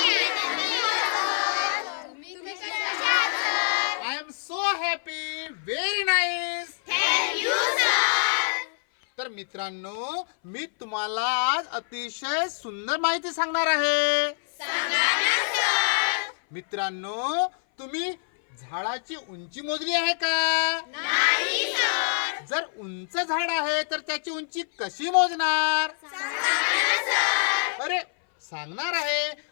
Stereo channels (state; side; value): silent; right; 58 dB below the other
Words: तुम्ही कसे आहात sir? I am so happy. Very nice. Thank you sir. तर मित्रांनो, मी तुम्हाला आज अतिशय सुंदर माहिती सांगणार आहे. सांगा ना सर. मित्रांनो, तुम्ही झाडाची उंची मोजली आहे का? नाही सर. जर उंच झाड आहे तर त्याची उंची कशी मोजणार? सांगा ना सर. अरे सांगणार आहे.